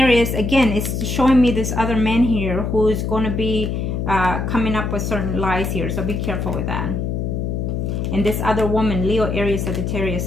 is, again, it's showing me this other man here who is going to be coming up with certain lies here. So be careful with that. And this other woman, Leo, Aries, Sagittarius,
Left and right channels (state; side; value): noise; left; hum, 2 dB below the sound